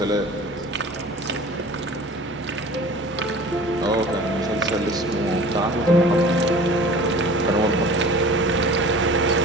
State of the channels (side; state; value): both; normal; correlation 0.42